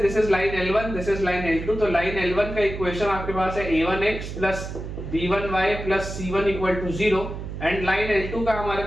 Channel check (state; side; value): noise; right; hum, 8 dB below the sound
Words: is line L1, this is line L2, तो लाइन L1 का इक्वेशन आपके पास है a1x plus b1y plus c1 equal to 0, and line L2 का हमारे